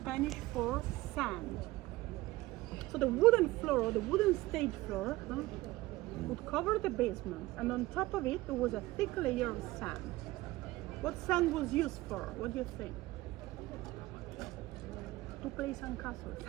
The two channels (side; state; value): left; quieter; 18.8 dB